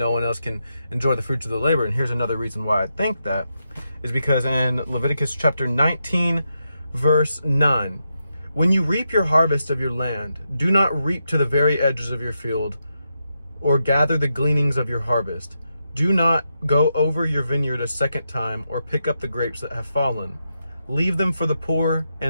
one else can enjoy the fruits of the labor. And here's another reason why I think that is because in Leviticus chapter 19, verse 9, when you reap your harvest of your land, do not reap to the very edges of your field or gather the gleanings of your harvest. Do not go over your vineyard a second time or pick up the grapes that have fallen. Leave them for the poor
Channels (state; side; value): inverted; both; correlation -0.85